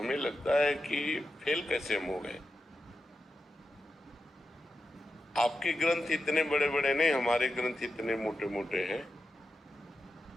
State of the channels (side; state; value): both; normal; correlation 0.89